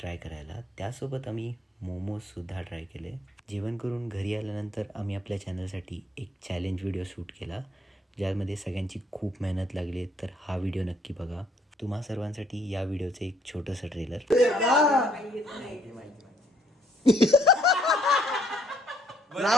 करायला. त्यासोबत आम्ही मोमोजसुद्धा ट्राय केले. जेवण करून घरी आल्यानंतर आम्ही आपल्या चॅनलसाठी एक चॅलेंज व्हिडिओ शूट केला, ज्यामध्ये सगळ्यांची खूप मेहनत लागली. तर हा व्हिडिओ नक्की बघा. तुम्हा सर्वांसाठी या व्हिडिओचं एक छोटंसं trailer.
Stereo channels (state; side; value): normal; both; correlation 0.66